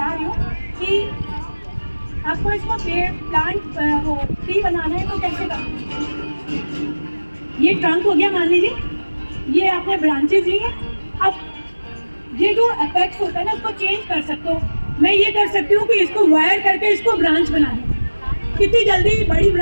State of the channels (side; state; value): both; inverted; correlation -1.00